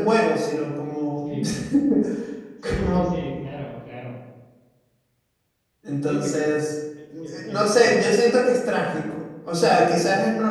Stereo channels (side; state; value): both; identical; correlation 1.00